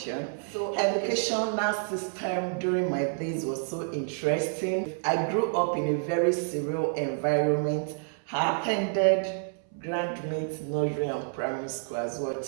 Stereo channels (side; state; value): left; silent; 59 dB below the other